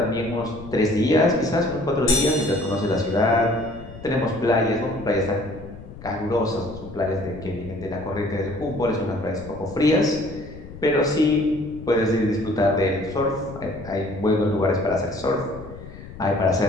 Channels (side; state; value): left; noise; rumble, 15 dB below the sound